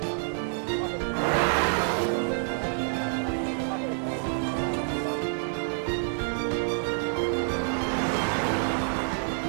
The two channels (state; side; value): silent; left; 60 dB below the other